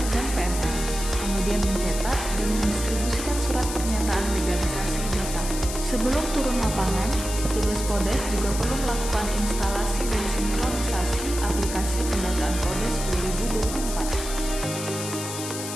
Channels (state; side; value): noise; left; hiss, 7 dB below the sound